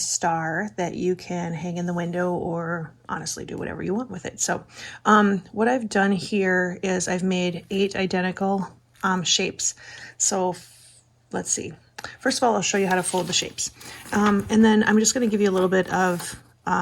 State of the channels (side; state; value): both; identical; correlation 1.00